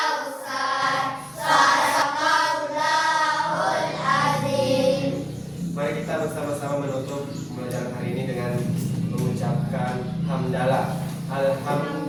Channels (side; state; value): both; identical; correlation 1.00